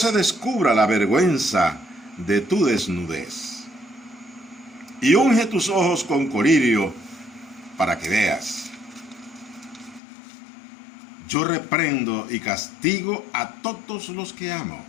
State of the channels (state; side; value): drops out; right; at 10.0 s